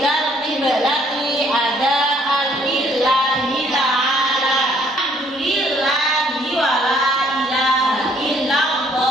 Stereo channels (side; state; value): both; normal; correlation 0.64